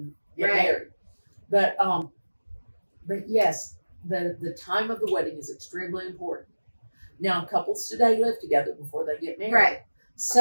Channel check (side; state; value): both; inverted; correlation -1.00